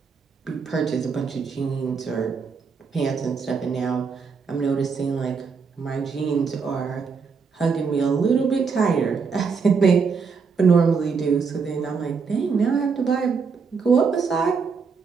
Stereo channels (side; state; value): left; quieter; 5.4 dB